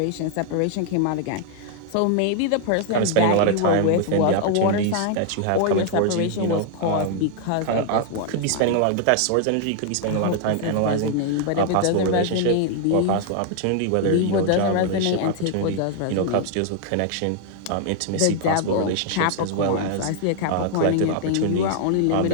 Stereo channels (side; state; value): both; different; correlation 0.00